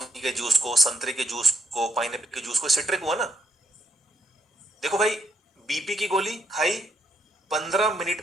के जूस को, संतरे के जूस को, पाइनएप्पल के जूस को, सिट्रिक हुआ ना। देखो भाई, बीपी की गोली खाई, 15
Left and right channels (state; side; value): normal; both; correlation 0.77